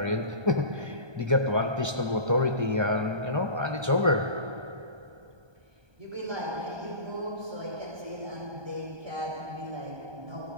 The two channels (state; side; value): late; left; 1.3 ms